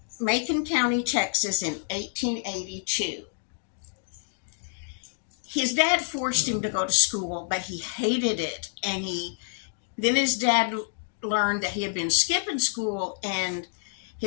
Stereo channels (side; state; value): right; silent; digital silence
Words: Macon County, Texas in 1882. His dad forced him to go to school, but he hated it. And then his dad learned that he had been skipping school, and